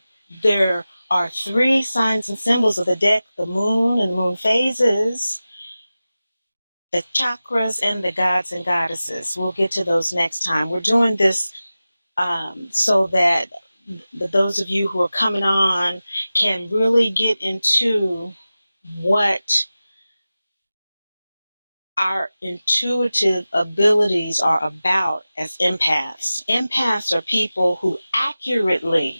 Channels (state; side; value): inverted; both; correlation -0.95